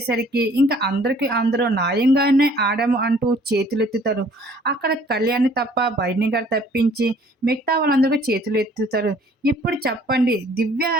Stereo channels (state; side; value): normal; both; correlation 0.57